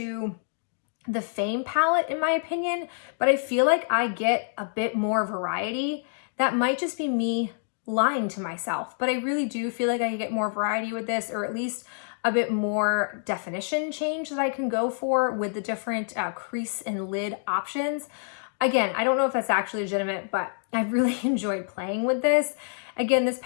the Fame palette in my opinion, but I feel like I get a bit more variety. That might just be me lying to myself, but I really do feel like I get more variety with this, or at least a bit more definition change that I can go for with the different crease and lid options. Again, I don't know if that's actually legitimate, but I really enjoyed playing with this. Again, this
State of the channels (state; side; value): silent; right; digital silence